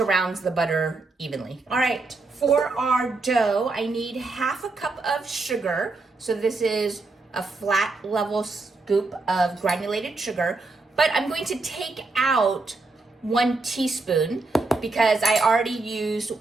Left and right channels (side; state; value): left; quieter; 3.5 dB